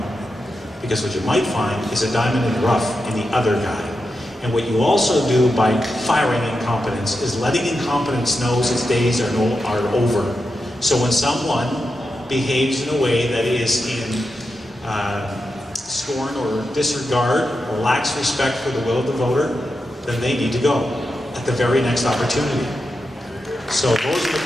Because what you might find is a diamond in the rough in the other guy. And what you also do by firing incompetence is letting incompetence know its days are over. So when someone behaves in a way that is in scorn or disregard or lacks respect for the will of the voter, then they need to go at the very next opportunity. So those are the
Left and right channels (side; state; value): both; normal; correlation 0.88